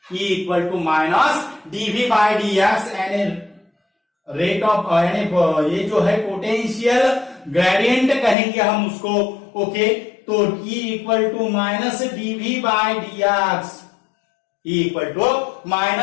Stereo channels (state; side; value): drops out; right; at 8.3 s